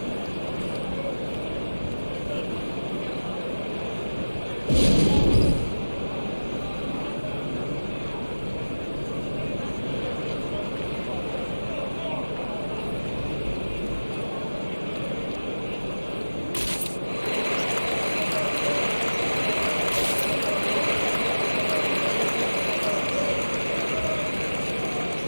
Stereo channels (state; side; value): inverted; both; correlation -1.00